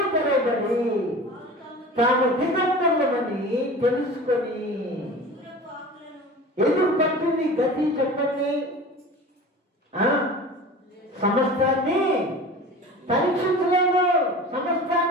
తెరవబడి తాము దిగంబరులమని తెలుసుకొని ఎందుకు పట్టింది గతి చెప్పండి? సమస్తాన్ని పరీక్షించలేదు.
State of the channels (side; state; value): both; normal; correlation 0.37